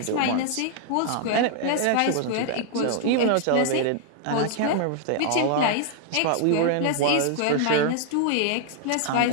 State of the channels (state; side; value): different; both; correlation 0.00